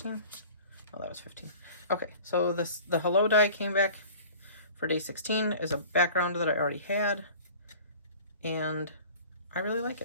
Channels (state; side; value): inverted; both; correlation -0.44